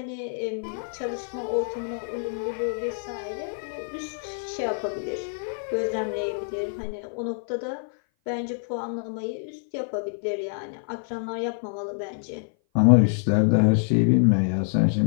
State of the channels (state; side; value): silent; right; 57 dB below the other